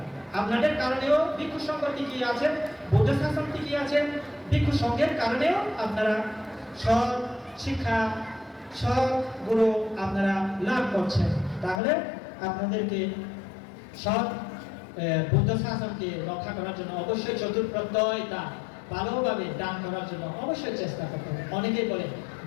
আপনাদের কারণেও ভিক্ষু সংঘ টিকিয়ে আছেন, বুদ্ধ শাসন টিকিয়ে আছেন। ভিক্ষু সংঘের কারণেও আপনারা সৎ শিক্ষা সৎ গুরু আপনারা লাভ করছেন। তাহলে আপনাদেরকে সৎ বুদ্ধ শাসনকে রক্ষা করার জন্য অবশ্যই চতুর্প্রত্যয়টা ভালোভাবে দান করার জন্য অবশ্যই চেষ্টা করতে হবে। অনেকেই বলে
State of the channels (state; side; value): drops out; right; at 11.8 s